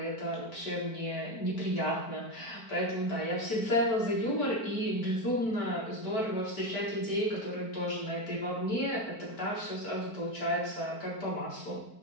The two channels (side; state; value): right; late; 4.5 ms